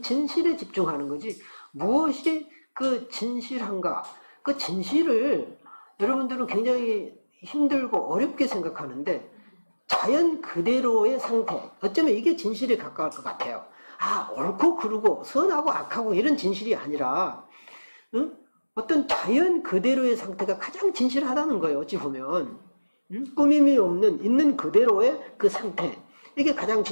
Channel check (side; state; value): both; inverted; correlation -1.00